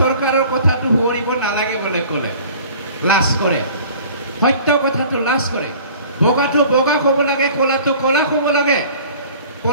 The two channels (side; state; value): both; inverted; correlation -0.47